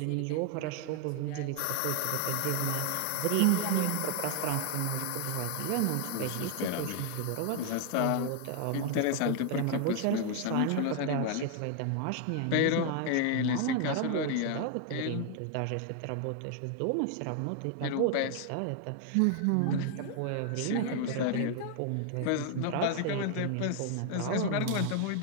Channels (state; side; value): different; both; correlation 0.00